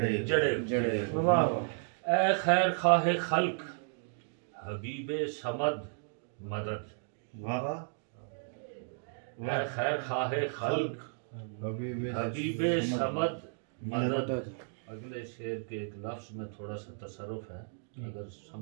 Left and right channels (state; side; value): silent; left; digital silence